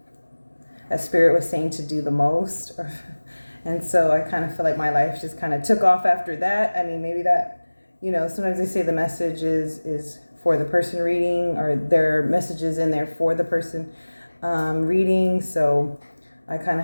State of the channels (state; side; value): inverted; both; correlation -1.00